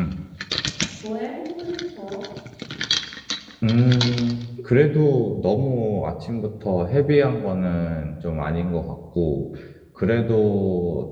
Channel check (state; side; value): identical; both; correlation 1.00